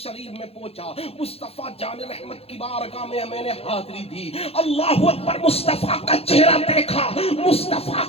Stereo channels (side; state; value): right; late; 0.29 ms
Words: میں پہنچا, مصطفیٰ جان رحمت کی بارگاہ میں نے حاضری دی. اللہ اکبر, مصطفیٰ کا چہرہ دیکھا, مصطفیٰ